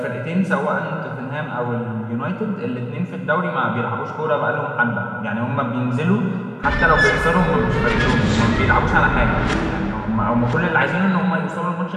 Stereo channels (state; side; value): identical; both; correlation 1.00